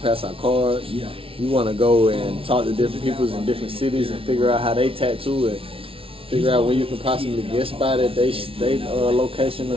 pass out cards. You want to go and talk to different people in different cities and figure out how they tattoo and figure out where you can possibly get spot at they location or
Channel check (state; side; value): late; left; 0.26 ms